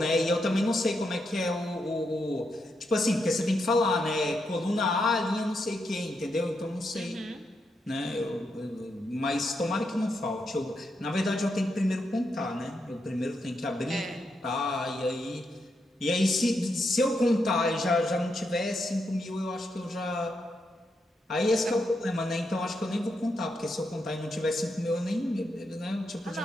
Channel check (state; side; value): normal; both; correlation 0.82